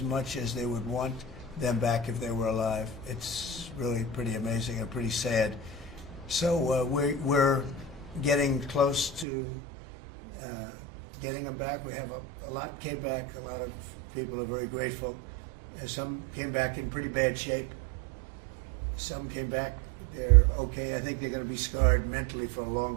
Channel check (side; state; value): left; drops out; at 9.2 s